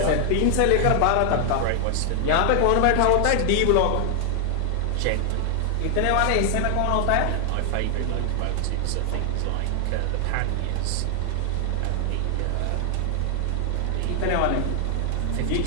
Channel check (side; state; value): both; different; correlation 0.00